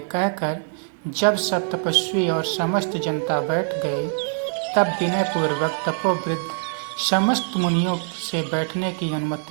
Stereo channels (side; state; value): left; silent; digital silence